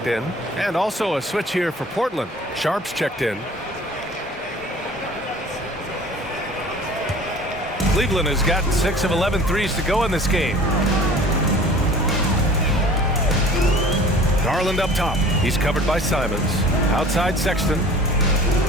in. And also a switch here for Portland. Sharp's checked in. Cleveland has gotten 6 of 11 threes to go in this game. Garland up top. He's covered by Simons. Outside Sexton.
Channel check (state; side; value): normal; both; correlation 0.45